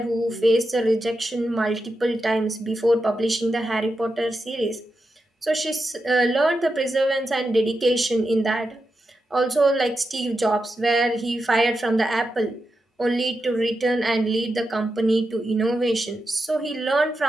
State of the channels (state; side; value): normal; both; correlation 0.88